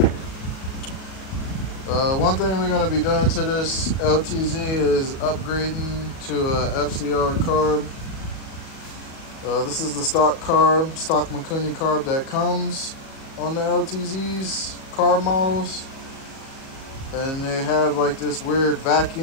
one thing we're going to be doing to this LTZ is upgrading to a FCR carb. This is the stock carb, stock Mikuni carb that comes on the LTZ's carb models, and they have like this weird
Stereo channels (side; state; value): right; late; 37 ms